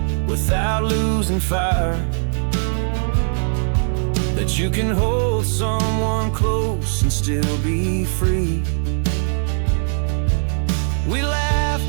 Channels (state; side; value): silent; left; 66 dB below the other